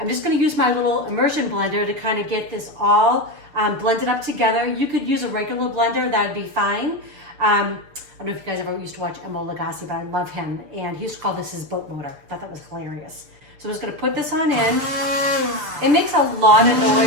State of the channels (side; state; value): left; late; 6.8 ms